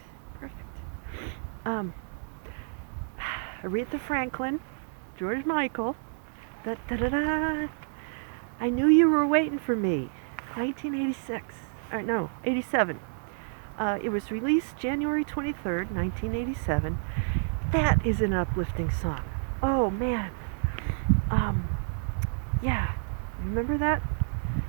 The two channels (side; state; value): left; silent; digital silence